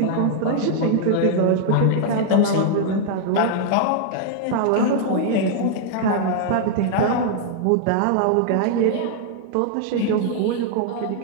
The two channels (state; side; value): different; both; correlation 0.00